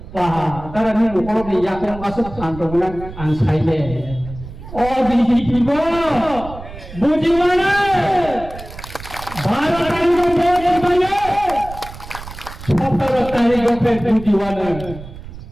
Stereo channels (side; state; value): right; noise; rumble, 14 dB below the sound